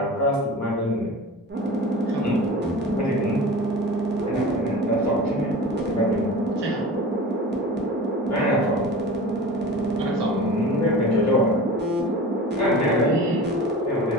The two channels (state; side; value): normal; both; correlation 0.35